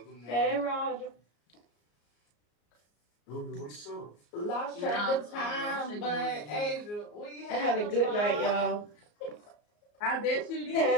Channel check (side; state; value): right; late; 34 ms